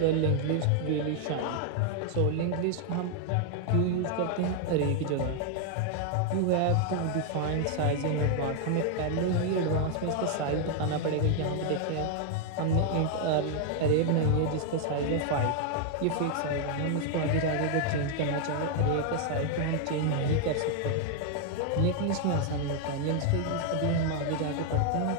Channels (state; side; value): different; both; correlation 0.00